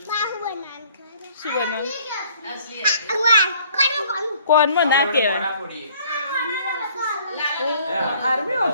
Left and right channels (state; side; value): inverted; both; correlation -0.58